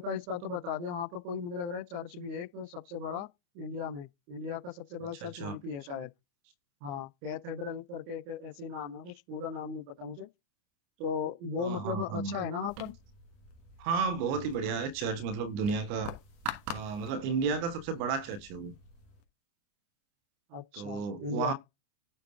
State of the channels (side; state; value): left; late; 29 ms